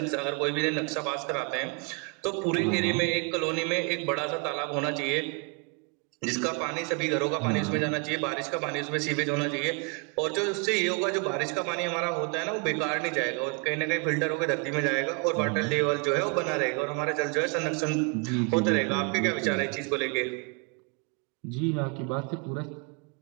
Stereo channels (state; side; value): quieter; left; 33.3 dB